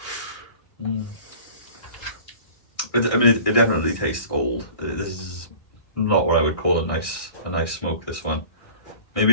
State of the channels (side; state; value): right; late; 1.6 ms